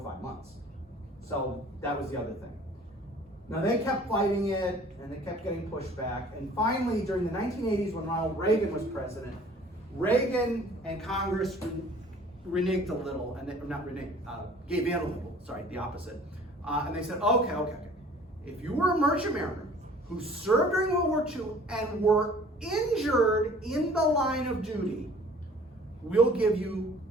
5 months. So that was the other thing. Now they kept fighting it, and they kept getting pushed back. And finally, during the 1980s, when Ronald Reagan was president, Reagan and Congress reneged a little, and gave in a little, sorry, the opposite. And they said, okay. If you were a merchant mariner who served during World War II and were injured in the line of duty, we'll give you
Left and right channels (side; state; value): both; normal; correlation 0.51